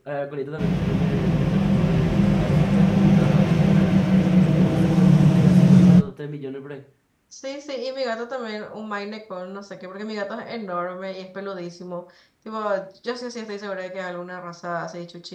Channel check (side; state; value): both; identical; correlation 1.00